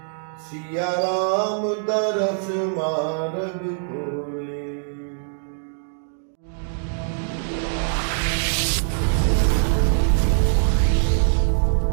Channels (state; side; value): silent; left; digital silence